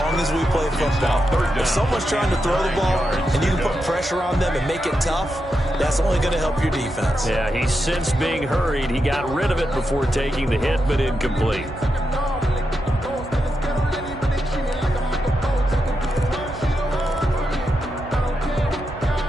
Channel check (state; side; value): normal; both; correlation 0.86